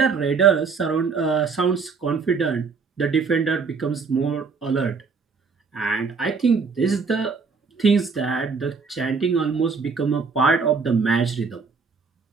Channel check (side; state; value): left; quieter; 5.1 dB